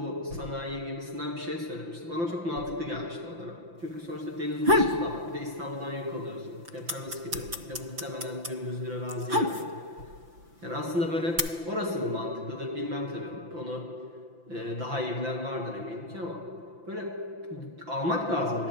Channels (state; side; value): late; left; 5.9 ms